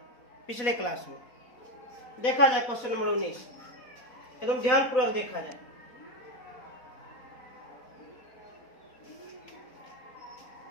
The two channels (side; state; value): right; late; 4.1 ms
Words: पिछले क्लास में। देखा जाए क्वेश्चन नंबर 19, एकदम ध्यानपूर्वक देखा जाए।